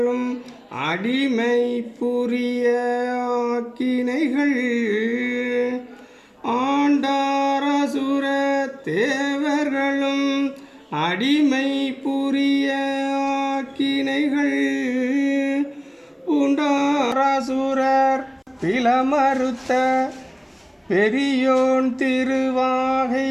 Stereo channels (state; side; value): identical; both; correlation 1.00